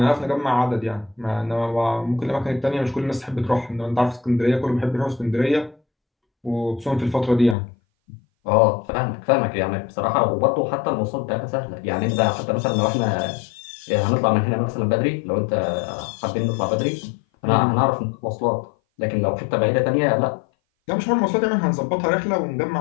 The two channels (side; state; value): right; drops out; at 7.6 s